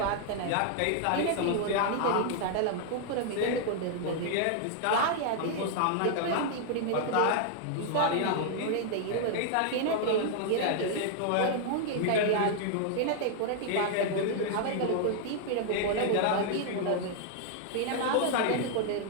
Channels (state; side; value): different; both; correlation 0.00